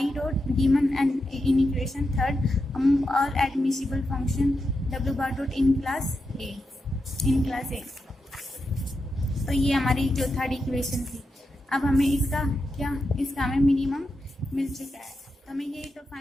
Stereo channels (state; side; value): normal; both; correlation 0.87